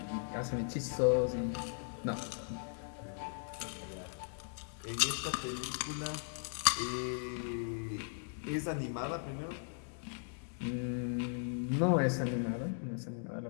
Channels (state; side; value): silent; right; digital silence